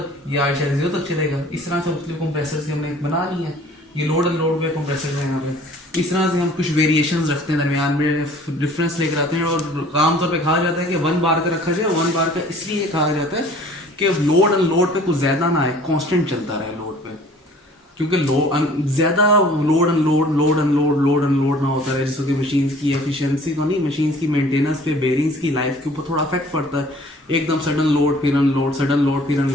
ये 8.0 तक चलेगा। इस तरह से मुख्तलिफ कंप्रेसर से हमने बना ली है। ये लोड एंड लोड पे कंप्रेसर है यहाँ पे। इस तरह से हम कुछ वेरिएशंस रखते हैं, दरमियान में डिफरेंस लेकर आते हैं, और आमतौर पे कहा जाता है कि 1 बार का रखा जाए। 1 बार का इसलिए कहा जाता है कि लोड एंड लोड पे कुछ ज़्यादा ना आए, कॉन्स्टेंट चलता रहे लोड पे, क्योंकि ज़्यादा लोड एंड लोड ना होता है, जिससे कि मशीन की एफिशिएंसी तो नहीं, मशीन की मेंटेनेंस पे, बेरिंग्स की लाइफ के ऊपर थोड़ा इफेक्ट पड़ता है। एकदम सडन लोड फिर अनलोड, सडन लोड फिर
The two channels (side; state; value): both; normal; correlation 0.51